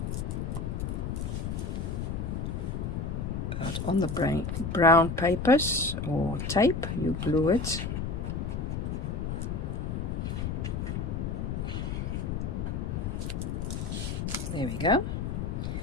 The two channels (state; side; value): noise; left; rumble, 2 dB below the sound